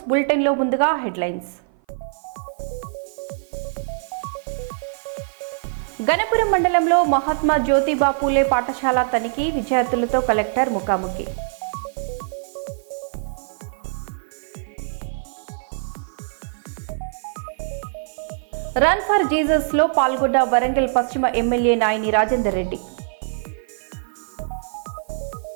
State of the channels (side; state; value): left; silent; 56 dB below the other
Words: bulletin లో ముందుగా హెడ్లైన్స్. గణపురం మండలంలో మహాత్మా జ్యోతిబా పూలే పాఠశాల తనిఖీ, విద్యార్థులతో కలెక్టర్ ముఖాముఖి. రన్ ఫర్ జీసస్ లో పాల్గొన్న వరంగల్ పశ్చిమ ఎమ్మెల్యే నాయని రాజేందర్ రెడ్డి.